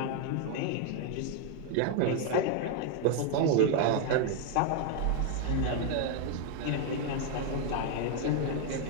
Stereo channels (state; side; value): different; both; correlation 0.00